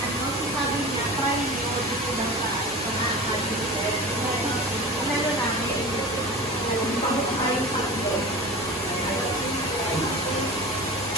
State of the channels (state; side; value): normal; both; correlation 0.32